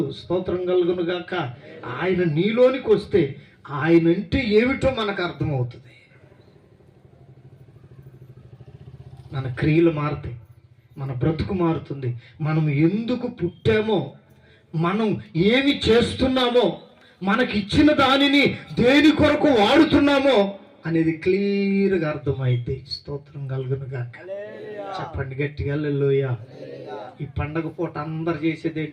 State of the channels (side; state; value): both; identical; correlation 1.00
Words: స్తోత్రం కలుగును గాక. ఆయన నీలోనికి వస్తే ఆయన అంటే ఏమిటో మనకు అర్థమవుతుంది. మన క్రియలు మారుతాయి, మన బ్రతుకు మారుతుంది. మనం ఎందుకు పుట్టామో, మనం ఏమి చేస్తున్నామో, మనకిచ్చిన దానిని దేని కొరకు వాడుతున్నామో అనేది క్లియర్గా అర్థమైంది. స్తోత్రం కలుగును గాక. చెప్పండి గట్టిగా హల్లెలూయా. ఈ పండగ పూట అందరు చేసేది